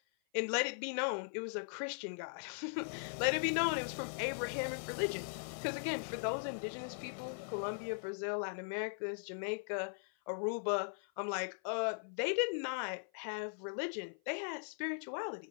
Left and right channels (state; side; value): silent; right; 51 dB below the other